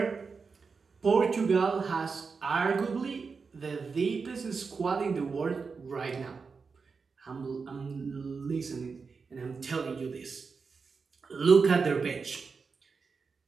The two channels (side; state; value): left; quieter; 5.0 dB